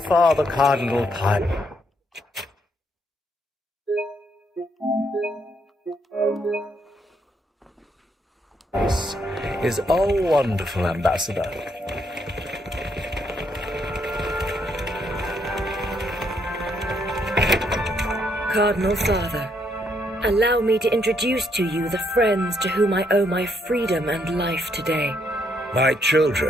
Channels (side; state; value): both; normal; correlation 0.74